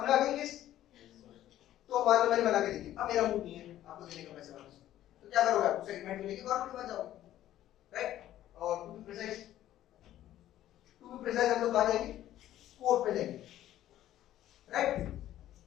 आ गई किस? तो मान लो मैंने बना के दी थी, अब मेरा मूड नहीं है आपको देने का पैसे वापस, तो क्या करोगे? आप उस एग्रीमेंट को लेके गवर्नमेंट के पास जाओगे, राइट? और टू बी प्रिसाइज हम लोग कहाँ जाएंगे? कोर्ट पे जाएंगे, राइट?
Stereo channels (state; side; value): quieter; right; 13.0 dB